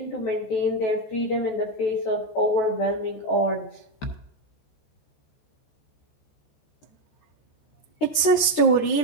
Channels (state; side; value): late; right; 13 ms